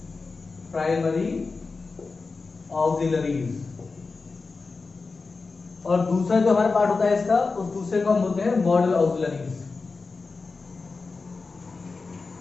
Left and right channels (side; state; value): right; quieter; 4.2 dB